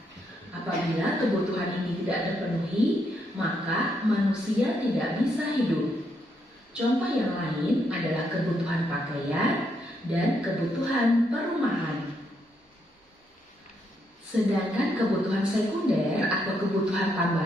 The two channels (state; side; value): normal; both; correlation 0.77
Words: Apabila kebutuhan ini tidak terpenuhi, maka manusia tidak bisa hidup. Contoh yang lain adalah kebutuhan pakaian dan kebutuhan perumahan. Sedangkan kebutuhan sekunder atau kebutuhan